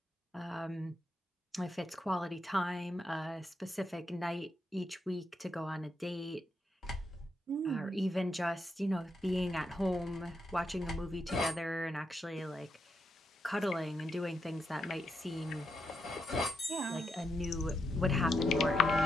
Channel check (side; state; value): both; normal; correlation 0.82